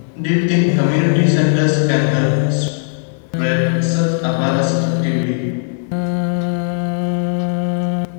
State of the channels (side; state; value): right; silent; 62 dB below the other